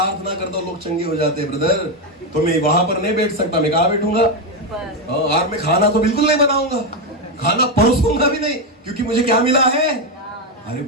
करता हूँ लोग चंगे हो जाते हैं ब्रदर, तो मैं वहां पर नहीं बैठ सकता। मैं कहाँ बैठूंगा? और मैं खाना तो बिल्कुल नहीं बनाऊंगा, खाना परोसूंगा भी नहीं, क्योंकि मुझे क्या मिला है? अरे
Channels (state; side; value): normal; both; correlation 0.07